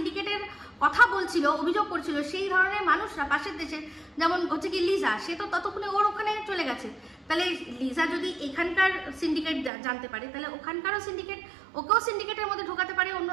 কথা বলছিল, অভিযোগ করছিল, সেই ধরনের মানুষরা পাশের দেশে, যেমন হচ্ছে কি লিজা, সে তো ততক্ষণে ওর ওখানে চলে গেছে। তাহলে লিজা যদি এখানকার সিন্ডিকেট জানতে পারে, তাহলে ওখানকারও সিন্ডিকেট, ওকেও সিন্ডিকেটের মধ্যে ঢোকাতে পারে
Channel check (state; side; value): drops out; left; at 9.7 s